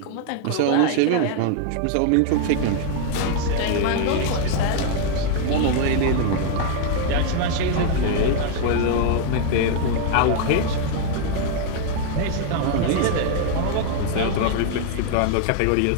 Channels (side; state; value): both; different; correlation 0.00